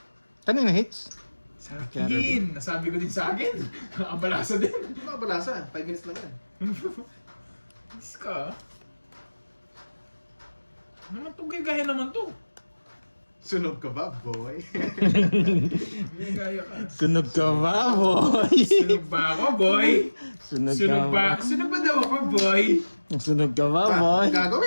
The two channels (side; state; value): both; inverted; correlation -1.00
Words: Kanina hits? Sa akin. Nasabi ko din sa akin. Nakabalasa din. Hindi makabalasa. 5 minutes lang yan. Is ka. Naman to, gaya naman to. Sunog ka ba, boy? May gaya ka. Sunog ka ba, boy? Sunog ba ako, boy? Sunog ka Sunog ba? ba? Sunog ba daw ako, boy? Sunog ka ba, boy?